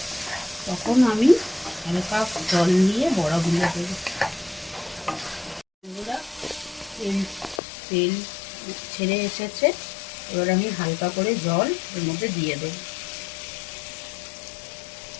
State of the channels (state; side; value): drops out; right; at 7.6 s